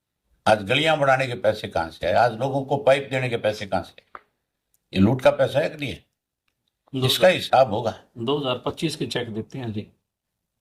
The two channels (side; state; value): both; identical; correlation 1.00